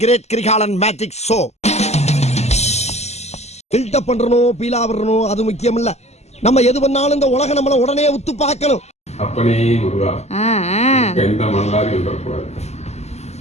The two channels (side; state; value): right; late; 0.32 ms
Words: great Kirikalan magic show. Buildup பண்றணும், பீலா வரணும், அது முக்கியம் இல்ல. நம்ம எது பண்ணாலும் இந்த உலக நம்மள உடனே உத்து பார்க்கணும். அப்பனே முருகா, எந்த மணலாரி வந்துடக்கூடாது.